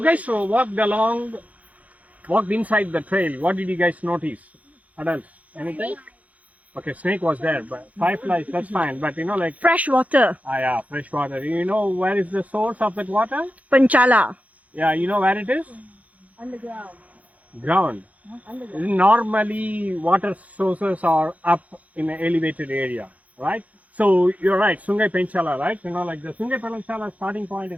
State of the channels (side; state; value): left; late; 0.071 ms